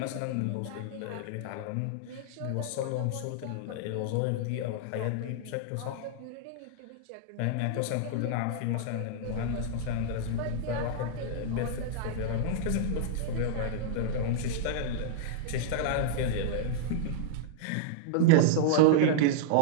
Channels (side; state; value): both; different; correlation -0.01